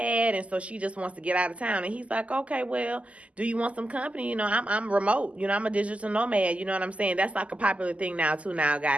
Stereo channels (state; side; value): late; left; 0.064 ms